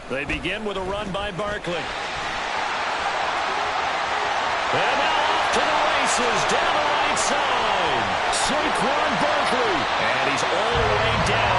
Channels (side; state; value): both; identical; correlation 1.00